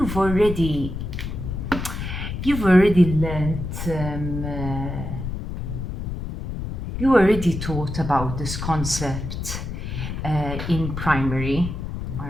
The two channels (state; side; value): noise; left; rumble, 5 dB below the sound